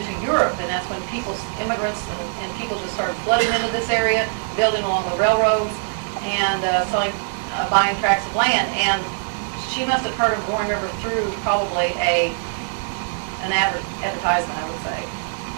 to Europe. And that's when immigrants and people just started flooding into this area, building along the railroads, and buying tracts of land. And she must have heard of Roaring River through probably an advertisement, I would say.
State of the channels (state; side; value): silent; left; digital silence